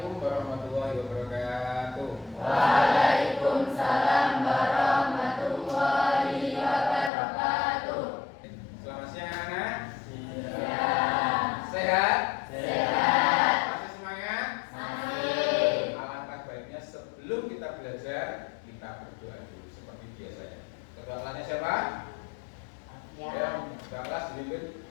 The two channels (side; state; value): right; drops out; at 7.1 s